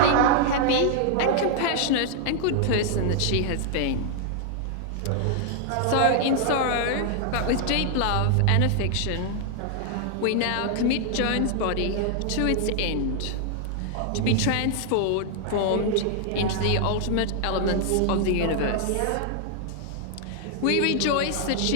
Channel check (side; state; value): both; different; correlation 0.00